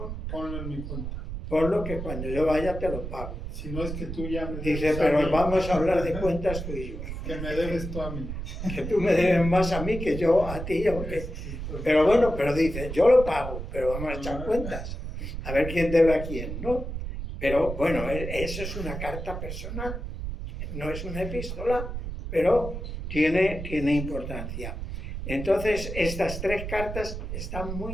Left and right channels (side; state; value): right; noise; rumble, 6 dB below the sound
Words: Ponlo en mi cuenta. por lo que cuando yo vaya te lo pago. Si no es que tú ya me Dice, debes a pero mí, vamos a hablar de cuentas tú y yo. que me debes tú a mí. Que tú me debes más a mí que yo a ti. Pero bueno, pero dice, yo lo pago, pero vamos a echar cuentas. A ver quién debe a quién, ¿no? Pero bueno, eso es una carta personal. No es una epístola, pero tiene importancia. Entonces, estas 3 cartas están